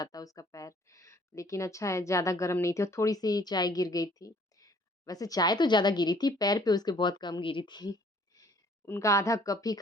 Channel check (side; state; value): both; normal; correlation 0.58